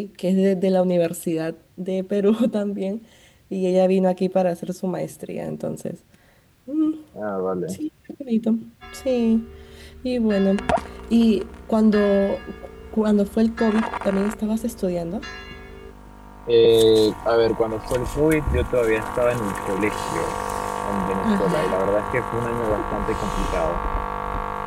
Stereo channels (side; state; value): both; identical; correlation 1.00